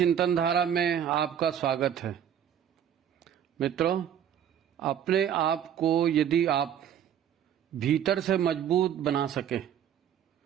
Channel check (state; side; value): quieter; left; 9.4 dB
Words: धारा में आपका स्वागत है। मित्रों, अपने आप को यदि आप भीतर से मजबूत बना सके